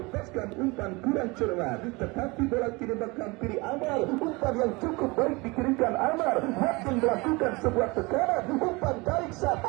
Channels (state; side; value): quieter; left; 25.2 dB